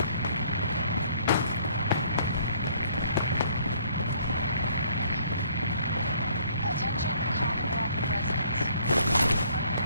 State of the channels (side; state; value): both; inverted; correlation -0.62